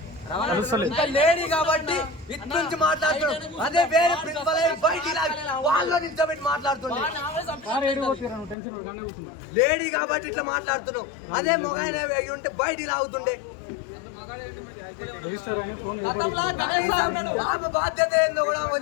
ఇంకా లేడీ కాబట్టి ఇటు నుంచి మాట్లాడుతున్నాడు. అదే వేరే ప్రిన్సిపల్ బయటికి వాళ్ళలో నిల్చోబెట్టి మాట్లాడుతున్నాడు. లేడీ కాబట్టి ఇట్లా మాట్లాడుతున్నావు. అదే మొగాయన ఉంటే బయటికి లాగుతుండే. ఆమె బాధ్యత ఏందో కూడా ఆమె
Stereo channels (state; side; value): drops out; right; at 8.6 s